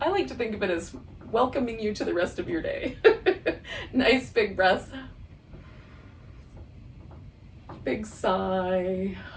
like to think of it as welcoming you to the rest of your day. Nice big breath. Big sigh.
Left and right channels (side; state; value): both; identical; correlation 1.00